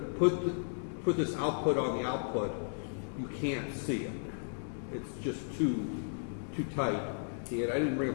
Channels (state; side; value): silent; right; digital silence